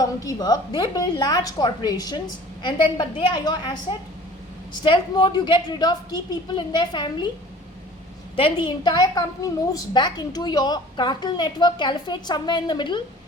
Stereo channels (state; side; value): normal; both; correlation 0.46